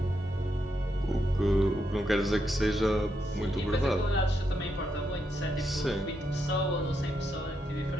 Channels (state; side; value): normal; both; correlation 0.81